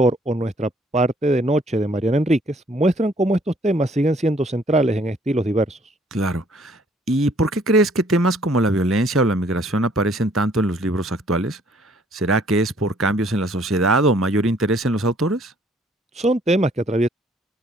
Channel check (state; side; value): normal; both; correlation 0.62